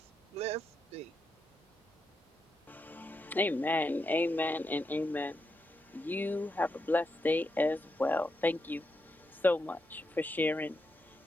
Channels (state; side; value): normal; both; correlation 0.85